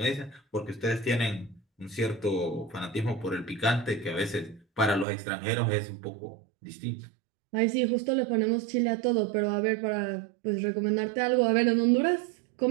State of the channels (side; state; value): left; drops out; at 5.1 s